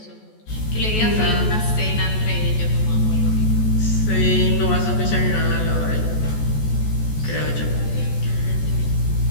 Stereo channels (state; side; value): late; right; 14 ms